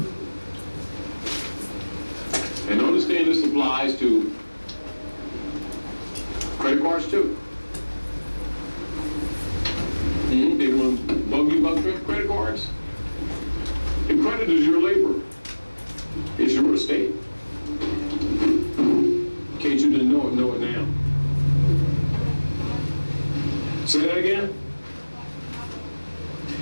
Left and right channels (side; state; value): both; inverted; correlation -1.00